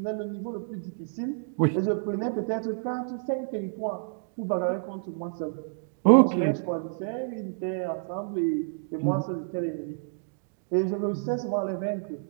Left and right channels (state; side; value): silent; left; digital silence